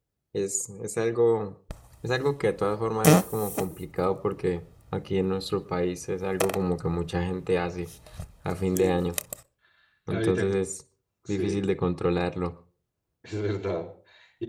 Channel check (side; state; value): both; identical; correlation 1.00